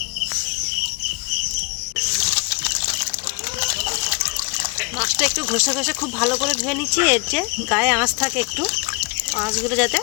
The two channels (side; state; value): right; quieter; 31.9 dB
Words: মাছটা একটু ঘষে ঘষে খুব ভালো করে ধুয়ে নিচ্ছি। এর যে গায়ে আঁশ থাকে, একটু আঁশগুলো যাতে